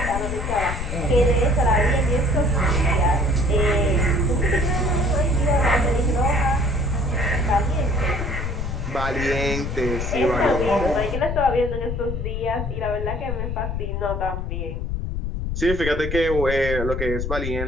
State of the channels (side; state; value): left; noise; rumble, 3 dB below the sound